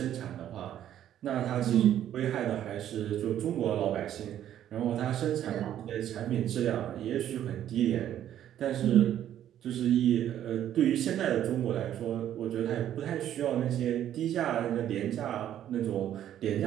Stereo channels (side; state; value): left; quieter; 11.1 dB